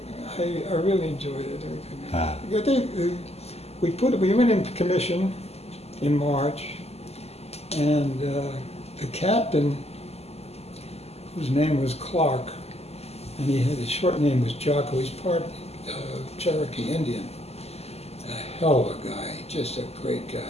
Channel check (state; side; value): late; right; 0.30 ms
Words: I really enjoyed it. I think we went into commission in March, and the captain, whose name was Clark, and his short name was Jocko. He's part Cherokee Indian. A hell of a guy, just a great guy.